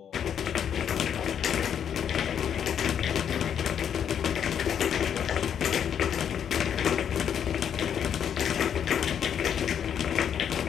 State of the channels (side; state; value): right; quieter; 8.6 dB